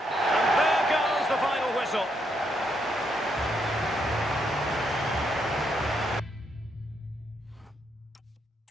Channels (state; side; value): normal; both; correlation 0.77